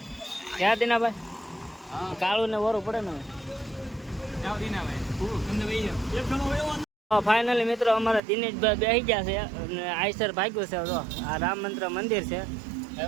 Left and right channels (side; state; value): left; drops out; at 8.2 s